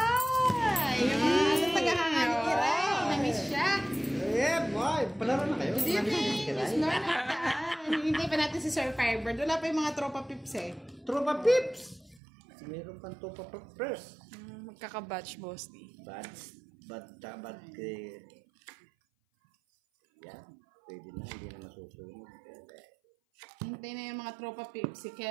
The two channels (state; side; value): drops out; left; at 12.2 s